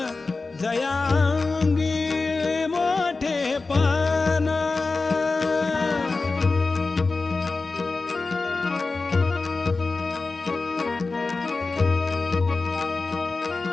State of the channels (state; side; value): quieter; right; 3.8 dB